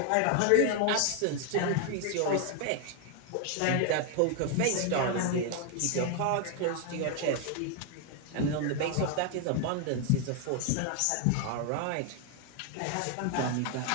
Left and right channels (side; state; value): both; different; correlation 0.01